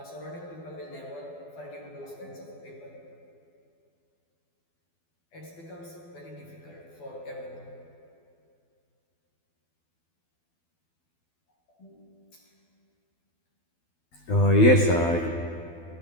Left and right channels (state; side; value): late; right; 12 ms